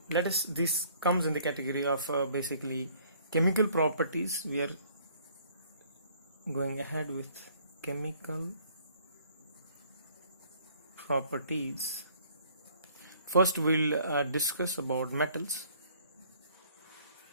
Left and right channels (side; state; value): both; inverted; correlation -0.59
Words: this comes in the category of basically chemical properties. We are going ahead with chemical properties. First we'll discuss about metals.